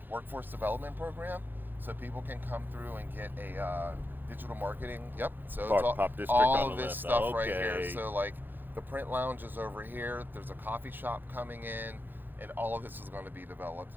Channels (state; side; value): late; left; 0.092 ms